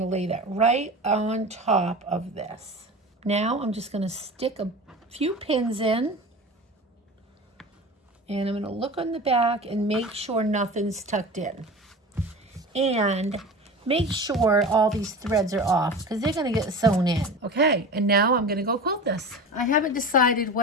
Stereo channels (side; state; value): both; normal; correlation 0.32